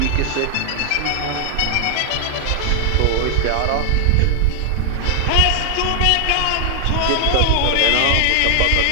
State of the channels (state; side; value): different; both; correlation 0.00